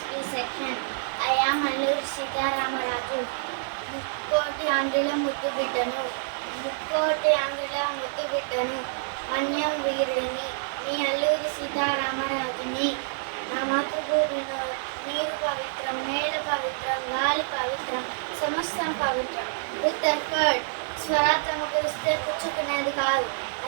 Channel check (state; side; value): silent; left; digital silence